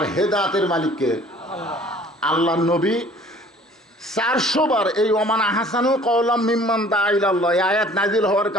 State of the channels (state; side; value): normal; both; correlation 0.52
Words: হেদায়েতের মালিককে আল্লাহ। নবী 400 বার এই ওমান আহসানু কওলাম মিম্মান দা ইলাল্লাহ আয়াত নাজিল হওয়ার